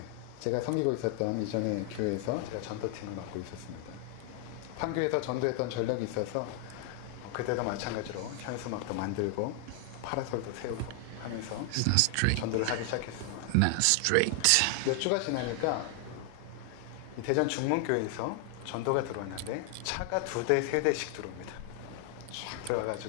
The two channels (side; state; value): both; different; correlation 0.00